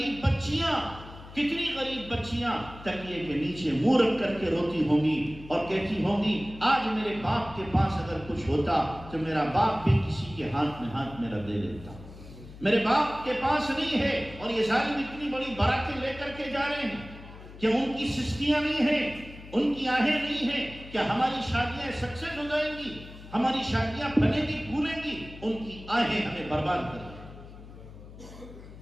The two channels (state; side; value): noise; left; hum, 16 dB below the sound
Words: بچیاں تکیے کے نیچے منہ رکھ کر کے روتی ہوں گی اور کہتی ہوں گی آج میرے باپ کے پاس اگر کچھ ہوتا تو میرا باپ بھی کسی کے ہاتھ میں ہاتھ میرا دے دیتا، میرے باپ کے پاس نہیں ہے، اور یہ ظالم اتنی بڑی باراتیں لے کر کے جا رہے ہیں کہ ان کی سستیاں نہیں ہیں، ان کی آہیں نہیں ہیں کہ ہماری شادیاں سکسیس ہو جائیں گی، ہماری شادیاں پھلیں گی پھولیں گی، ان کی آہیں ہمیں برباد کر دیں۔